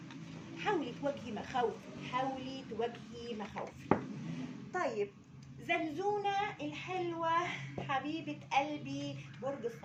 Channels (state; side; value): identical; both; correlation 1.00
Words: حاولي تواجهي مخاوفك، حاولي تواجهي مخاوفك. طيب زنزونة الحلوة حبيبة قلبي برج